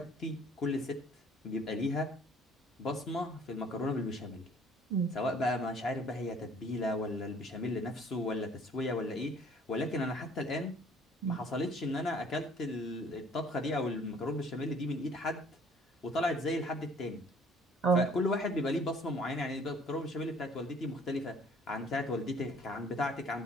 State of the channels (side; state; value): both; normal; correlation 0.56